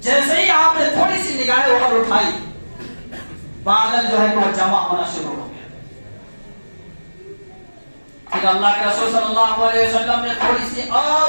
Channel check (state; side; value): inverted; both; correlation -1.00